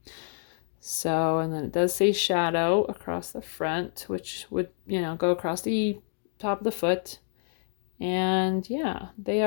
So, and then it does say shadow across the front, which would, go across the top of the foot. And yeah, they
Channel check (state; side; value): silent; right; digital silence